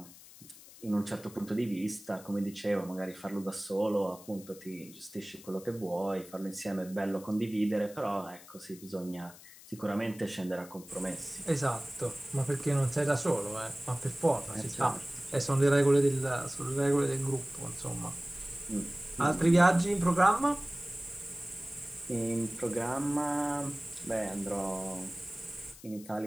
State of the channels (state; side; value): noise; left; hiss, 19 dB below the sound